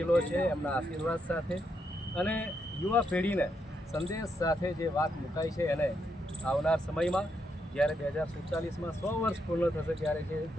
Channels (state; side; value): normal; both; correlation 0.79